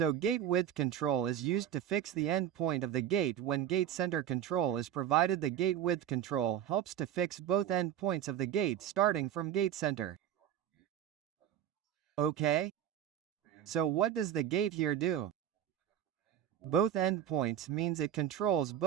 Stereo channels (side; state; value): left; quieter; 10.6 dB